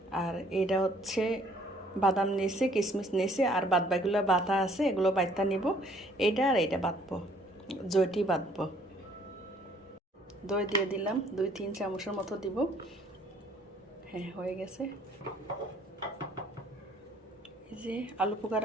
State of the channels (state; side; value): normal; both; correlation 0.60